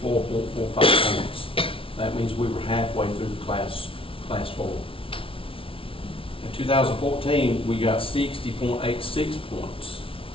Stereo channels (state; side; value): late; right; 0.26 ms